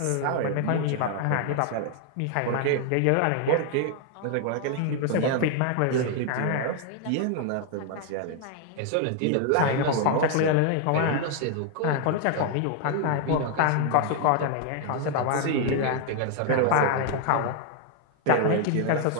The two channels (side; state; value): both; different; correlation 0.00